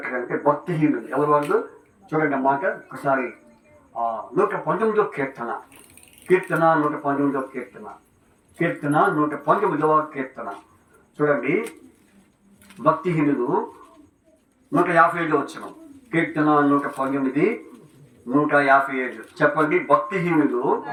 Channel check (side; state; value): both; identical; correlation 1.00